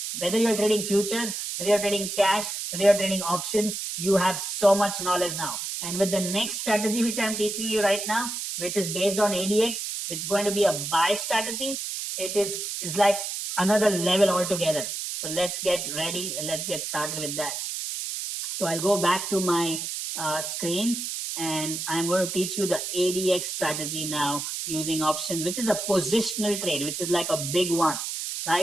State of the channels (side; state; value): right; noise; hiss, 4 dB below the sound